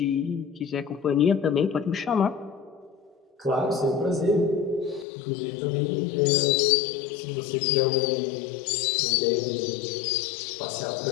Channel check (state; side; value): drops out; right; at 5.1 s